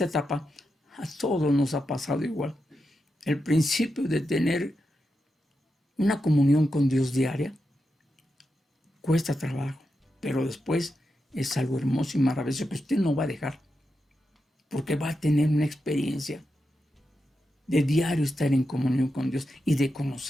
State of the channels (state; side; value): normal; both; correlation 0.88